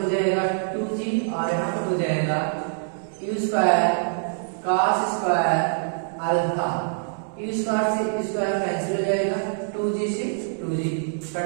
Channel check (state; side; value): silent; left; digital silence